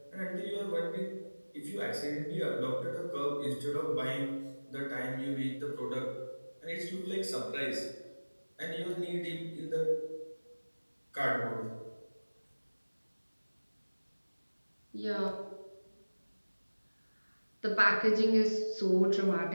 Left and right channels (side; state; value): both; inverted; correlation -1.00